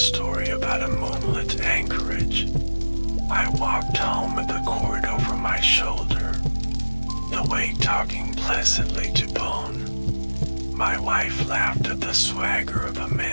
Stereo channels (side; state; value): both; inverted; correlation -1.00